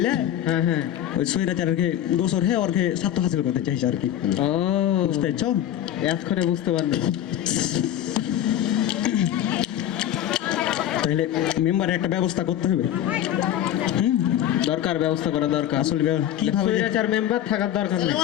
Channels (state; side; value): quieter; right; 11.4 dB